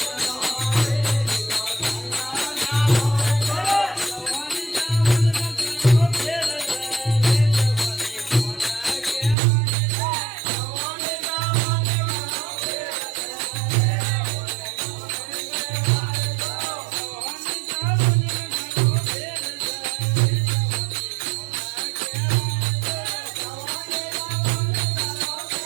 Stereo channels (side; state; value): left; drops out; at 9.3 s